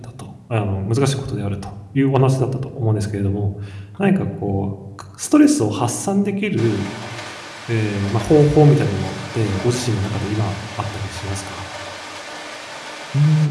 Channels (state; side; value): identical; both; correlation 1.00